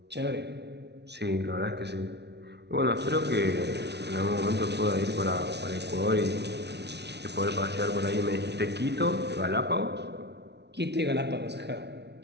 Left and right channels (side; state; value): left; late; 0.50 ms